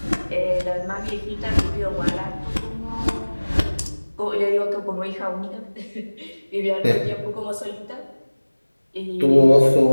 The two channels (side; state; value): both; inverted; correlation -1.00